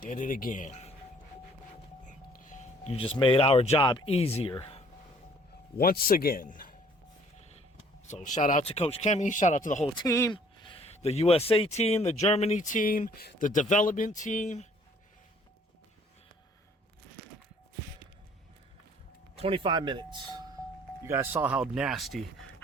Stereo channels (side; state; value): both; normal; correlation 0.58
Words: Did it again. You just made our job easier. Once again. So shout out to Koch Chemie. Shout out to the whole team. The USA team, the Germany team, the development team. 25 minutes. You guys saw how nasty,